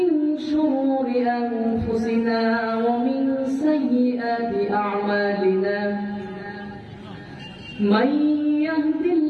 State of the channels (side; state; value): both; identical; correlation 1.00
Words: شرور أنفسنا ومن سيئات أعمالنا من يهد